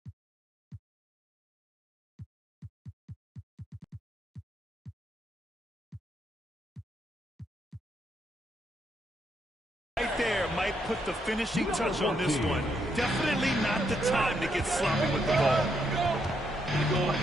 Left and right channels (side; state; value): both; normal; correlation 0.77